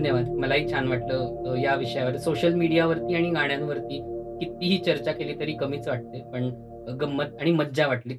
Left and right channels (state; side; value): identical; both; correlation 1.00